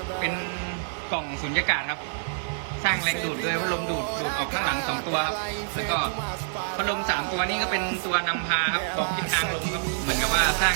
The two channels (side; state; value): left; silent; digital silence